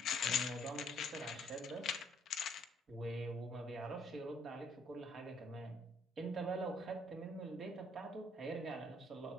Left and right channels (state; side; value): normal; both; correlation 0.65